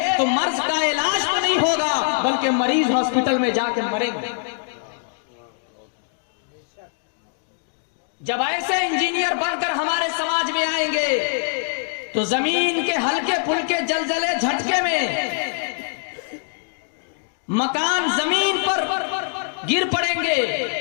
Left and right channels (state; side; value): silent; right; digital silence